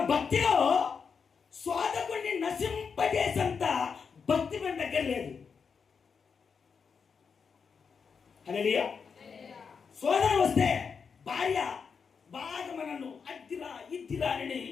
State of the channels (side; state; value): right; quieter; 5.9 dB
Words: భక్తిలో శోధకుడిని నశింపజేసేంత భక్తి మన దగ్గర లేదు. హల్లెలూయా. శోధన వస్తే భార్య బాగా మనను అద్దిరా ఇద్దిరా అని